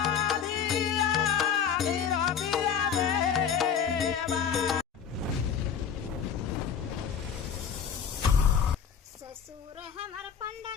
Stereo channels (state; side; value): quieter; right; 7.4 dB